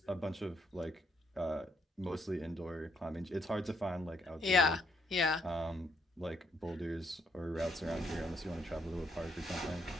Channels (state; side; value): normal; both; correlation 0.74